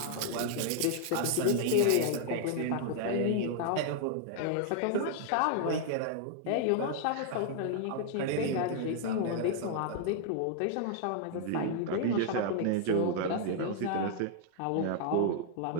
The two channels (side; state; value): both; different; correlation 0.00